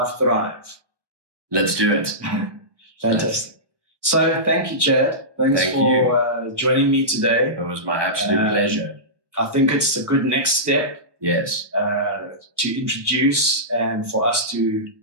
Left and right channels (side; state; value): left; late; 1.0 ms